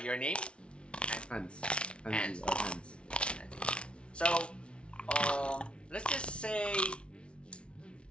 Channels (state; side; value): late; right; 0.059 ms